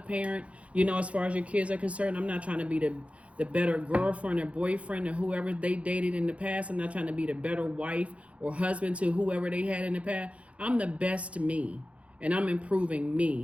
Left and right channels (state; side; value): late; left; 0.063 ms